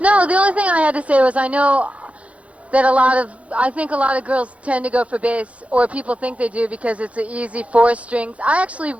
the only thing I had to say was I know that I think a lot of girls tend to go for bass, or people think they do because it's an easy 4 strings. I actually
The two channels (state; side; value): late; left; 0.064 ms